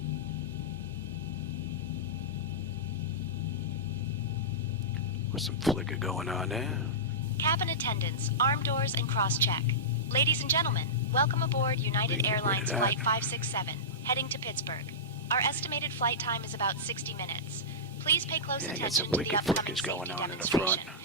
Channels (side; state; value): both; normal; correlation -0.15